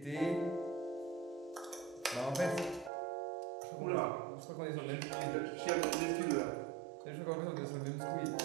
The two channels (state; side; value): drops out; left; at 2.9 s